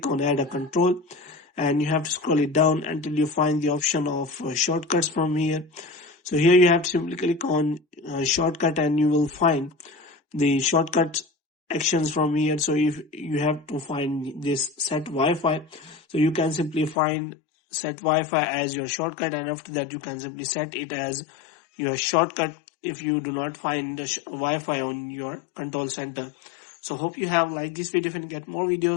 on add a control, and you have to scroll it down until you find the option of shortcuts from here. So here you have to simply click on shortcut, and you will find the shortcut actions from here. So if you have to find this set Wi-Fi, so you can simply find set Wi-Fi as your shortcut, and after that you can simply set it as your shortcut if you do not find the Wi-Fi on your control center. So hope you have liked this video. If you get more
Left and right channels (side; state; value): right; drops out; at 16.9 s